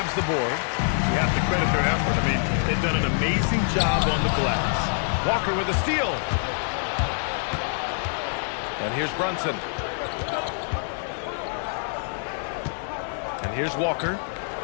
the board. You have to credit their effort. I mean, they've done an amazing job on the glass. Walker with a steal. And here's Brunson. And here's Walker.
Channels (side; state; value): right; silent; digital silence